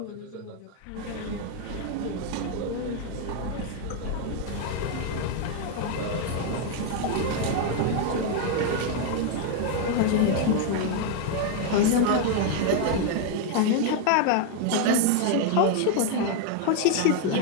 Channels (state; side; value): different; both; correlation 0.00